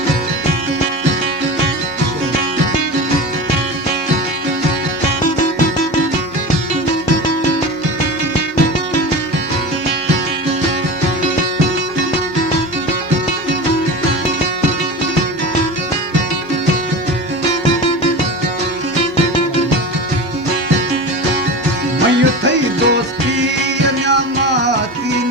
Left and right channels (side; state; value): both; normal; correlation 0.29